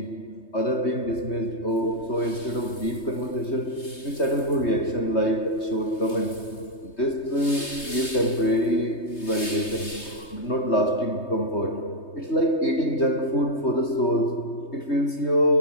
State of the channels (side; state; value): right; late; 3.2 ms